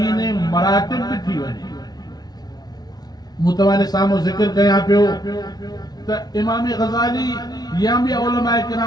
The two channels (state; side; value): late; right; 0.19 ms